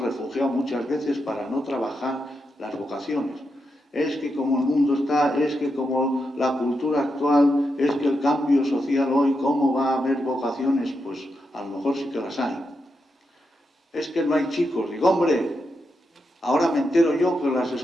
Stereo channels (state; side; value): normal; both; correlation 0.85